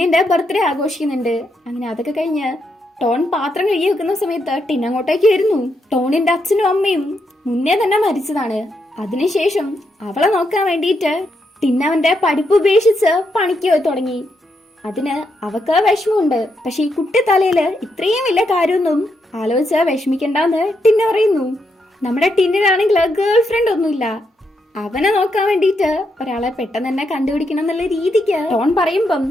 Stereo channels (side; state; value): both; normal; correlation 0.81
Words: ബർത്ത്ഡേ ആഘോഷിക്കുന്നുണ്ട്. അങ്ങനെ അതൊക്കെ കഴിഞ്ഞ് ടോൺ പാത്രം കഴുകി വെക്കുന്ന സമയത്ത് ടിൻ അങ്ങോട്ടേക്ക് വരുന്നു. ടോണിന്റെ അച്ഛനും അമ്മയും മുന്നേ തന്നെ മരിച്ചതാണ്. അതിനുശേഷം അവളെ നോക്കാൻ വേണ്ടിയിട്ട് ടിൻ അവന്റെ പഠിപ്പ് ഉപേക്ഷിച്ച് പണിക്ക് തുടങ്ങി. അതിന് അവക്ക് വിഷമമുണ്ട്. പക്ഷെ ഈ കുട്ടി തലയില് ഇത്രയും വലിയ കാര്യമൊന്നും ആലോചിച്ച് വിഷമിക്കണ്ടെന്ന് ടിന്ന പറയുന്നു. നമ്മുടെ ടിന്നിനാണെങ്കിൽ ഗേൾ ഫ്രണ്ട് ഒന്നുമില്ല. അവനെ നോക്കാൻ വേണ്ടിയിട്ട് ഒരാളെ പെട്ടെന്ന് തന്നെ കണ്ടുപിടിക്കണം എന്നുള്ള രീതിക്ക് ടോൺ പറയുമ്പം